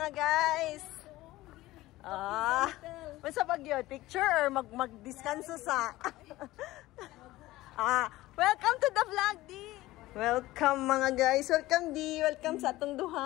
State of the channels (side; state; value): right; quieter; 17.5 dB